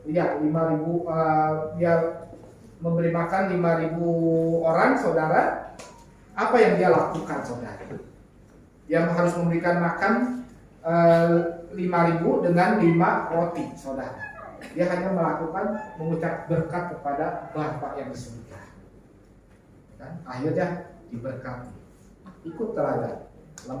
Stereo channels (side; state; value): both; identical; correlation 1.00